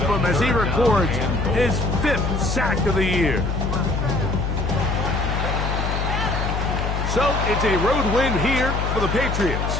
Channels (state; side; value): noise; left; hum, 1 dB below the sound